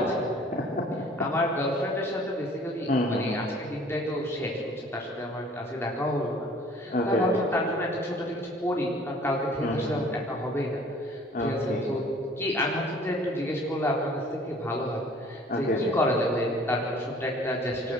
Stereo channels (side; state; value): both; normal; correlation 0.52